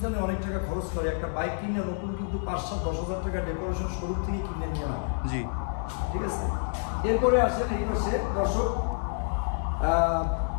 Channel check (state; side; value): silent; right; digital silence